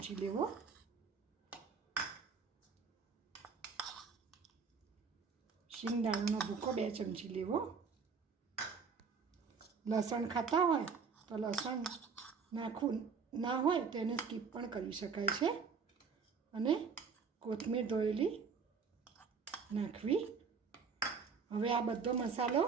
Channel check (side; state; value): left; quieter; 5.6 dB